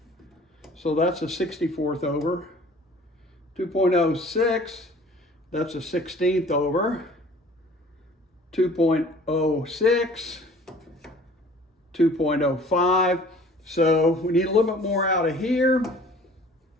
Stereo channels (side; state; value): both; normal; correlation 0.50